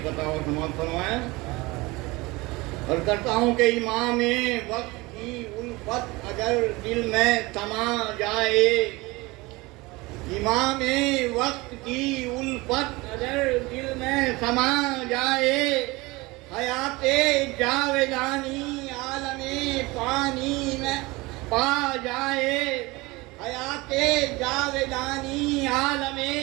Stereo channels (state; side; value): quieter; left; 22.8 dB